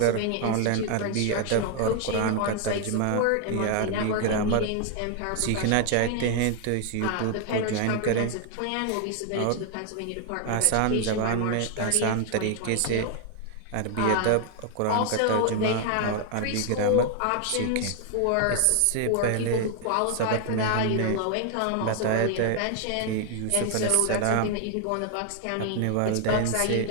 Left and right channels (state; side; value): different; both; correlation 0.00